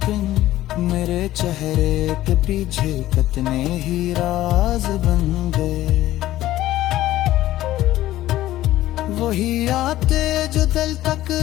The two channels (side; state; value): right; quieter; 14.8 dB